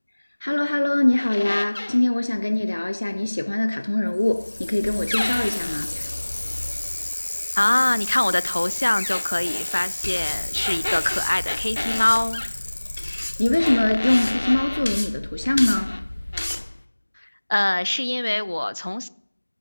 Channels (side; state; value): both; inverted; correlation -1.00